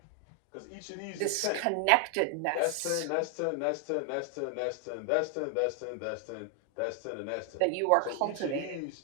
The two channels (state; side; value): different; both; correlation 0.00